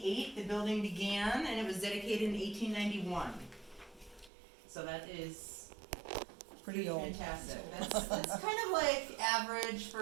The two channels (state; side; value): drops out; left; at 4.3 s